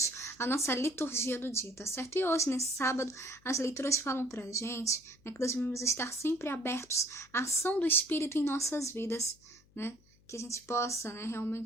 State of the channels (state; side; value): noise; left; hum, 30 dB below the sound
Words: a nossa liturgia do dia, tá certo? E hoje, nesse sábado, as leituras falam para a gente, que nós devemos estar sempre abertos à ação do Espírito em nossas vidas, né? Que a gente possa,